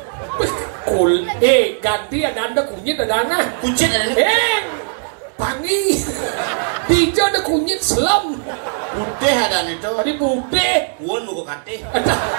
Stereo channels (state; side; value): silent; left; digital silence